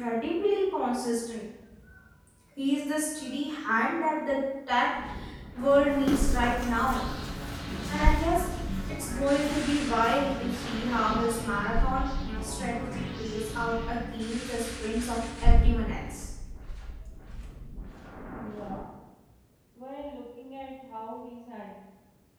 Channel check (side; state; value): both; identical; correlation 1.00